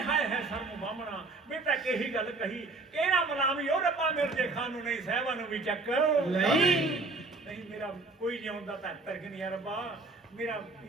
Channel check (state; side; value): quieter; left; 3.5 dB